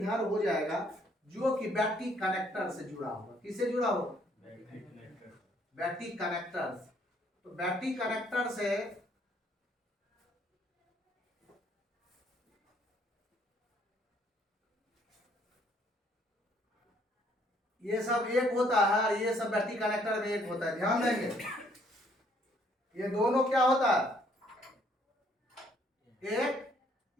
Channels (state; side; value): normal; both; correlation 0.65